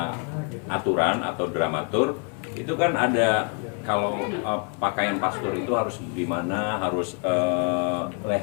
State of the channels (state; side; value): quieter; right; 39.4 dB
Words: aturan atau dramatur itu kan ada, kalau pakaian pastor itu harus gimana, harus